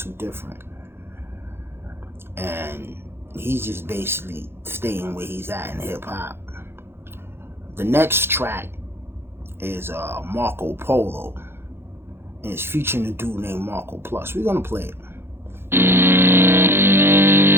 Different. And he's just basically staying where he's at in hip hop. The next track is Marco Polo. And it's featuring a dude named Marco Plus. We're gonna play it.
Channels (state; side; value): late; left; 0.11 ms